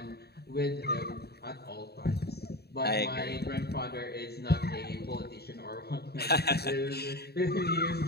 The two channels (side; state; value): right; late; 0.47 ms